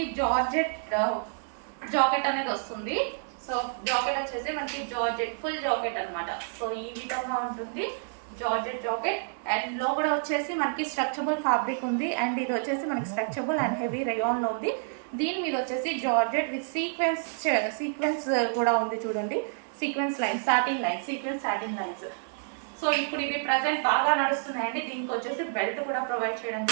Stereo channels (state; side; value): silent; left; digital silence